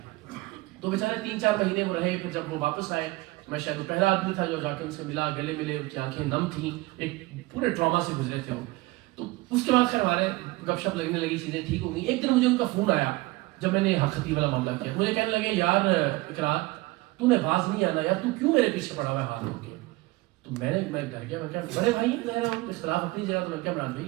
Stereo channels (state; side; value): quieter; left; 20.8 dB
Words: تو بیچارے 3-4 مہینے وہ رہے. پھر جب وہ واپس آئے, میں شاید وہ پہلا آدمی تھا جو جا کے ان سے ملا, گلے ملے, ان کی آنکھیں نم تھیں, ایک پورے ٹراما سے گزرے تھے وہ. تو اس کے بعد خیر ہمارے گپ شپ لگنے لگی, چیزیں ٹھیک ہو گئی. ایک دن مجھے ان کا فون آیا جب میں نے حق خطیب والا معاملہ کیا. مجھے کہنے لگے یار اقرار تو نے باز نہیں آنا یار, تو کیوں میرے پیچھے پڑا ہوا ہے ہاتھ ہو کے. تو میں ڈر گیا, میں کہا بڑے بھائی اختلاف اپنی جگہ. تو میں کہا عمران